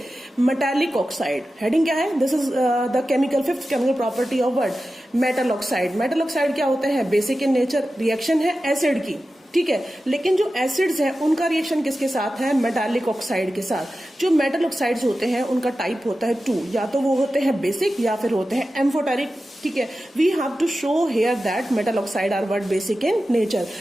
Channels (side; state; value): both; normal; correlation 0.93